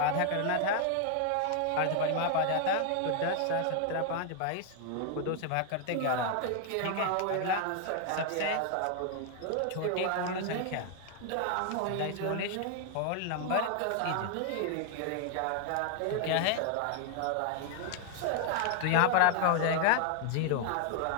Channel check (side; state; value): both; different; correlation 0.00